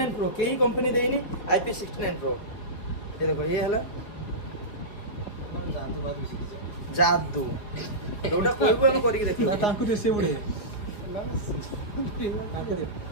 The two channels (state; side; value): late; right; 4.6 ms